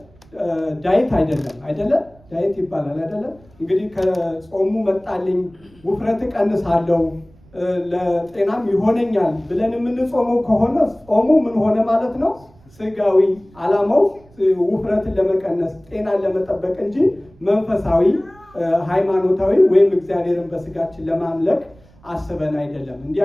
ዳይት አይደለም ዳይት ይባላል አይደለም። እንግዲህ ከጾሙ መጣልኝ ውፍረት ቀንሳለሁ ለጤናም ይሆነኛል ብለን የምንጾመው ከሆነ ጾሙ ምን ሆነ ማለት ነው? ስጋዊ ዓላማው ውፍረትን ለመቀነስ ጤናን ለመጠበቅ እንጂ መንፈሳዊ ሃይማኖታዊ ወይም እግዚአብሔርን በስጋችን ለማምለክ አስበን አይደለም። እንዲህ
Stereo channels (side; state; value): right; noise; rumble, 27 dB below the sound